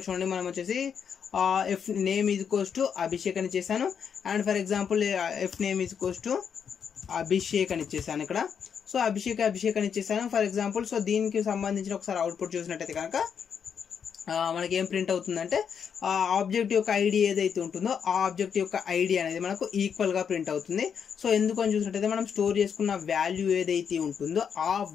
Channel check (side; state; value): right; quieter; 7.3 dB